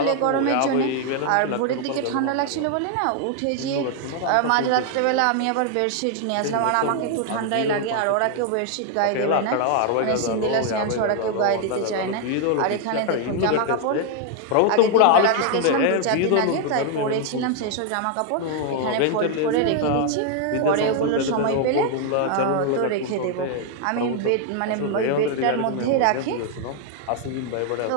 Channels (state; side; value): different; both; correlation 0.00